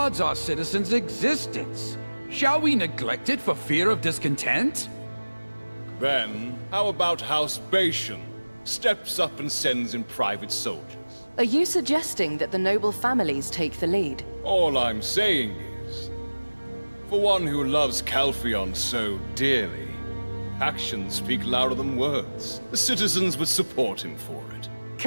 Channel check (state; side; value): inverted; both; correlation -1.00